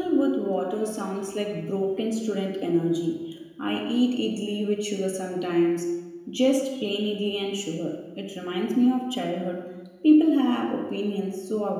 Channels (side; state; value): both; identical; correlation 1.00